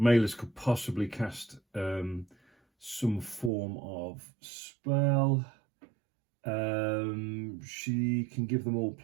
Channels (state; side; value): drops out; left; at 3.5 s